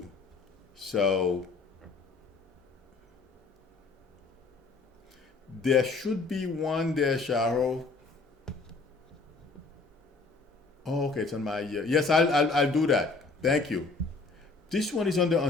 So there should be one there, Sharo. Oh, okay, it's on my ear. Yes, I'll do that. Thank you. This one is under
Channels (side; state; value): right; quieter; 3.9 dB